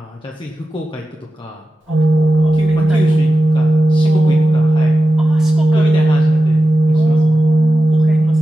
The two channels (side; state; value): both; normal; correlation 0.93